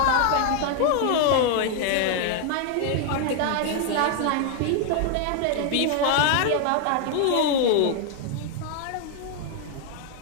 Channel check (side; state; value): both; different; correlation 0.00